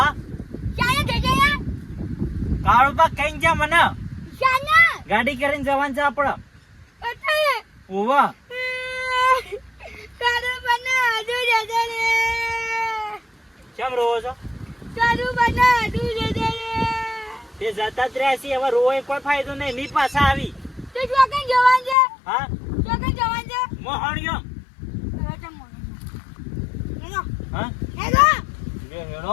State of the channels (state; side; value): drops out; right; at 22.0 s